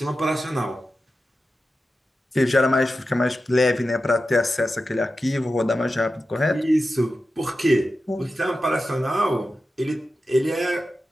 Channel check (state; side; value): normal; both; correlation 0.92